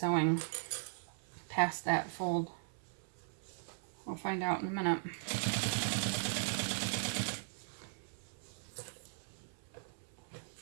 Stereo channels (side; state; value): left; silent; 52 dB below the other